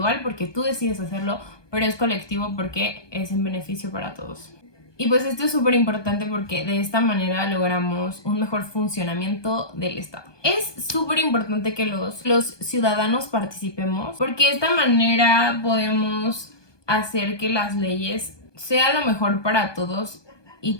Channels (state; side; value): late; right; 1.2 ms